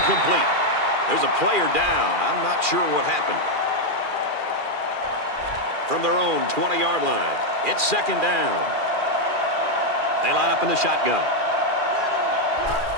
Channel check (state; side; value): late; left; 2.4 ms